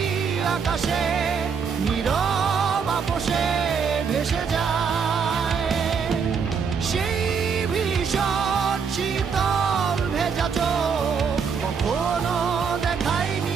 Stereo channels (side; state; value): left; quieter; 6.1 dB